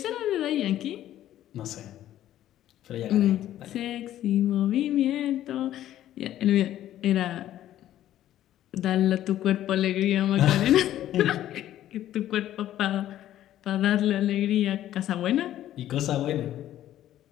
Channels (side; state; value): right; quieter; 12.6 dB